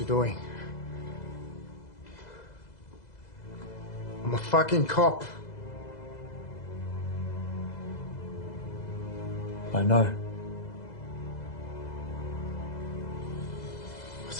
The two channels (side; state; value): right; late; 2.0 ms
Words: doing? I'm a fucking cop. I know.